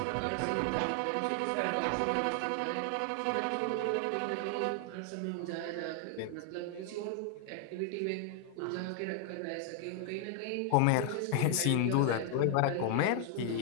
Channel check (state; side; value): different; both; correlation 0.00